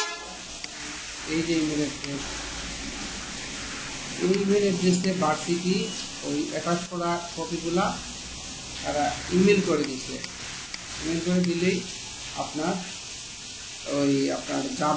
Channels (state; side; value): identical; both; correlation 1.00